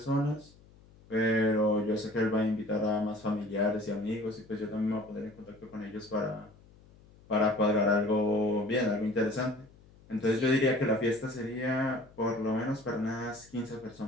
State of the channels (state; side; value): noise; left; hum, 26 dB below the sound